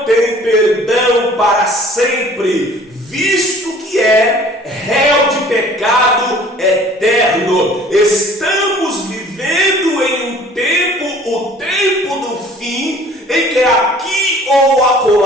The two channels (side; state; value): both; normal; correlation 0.51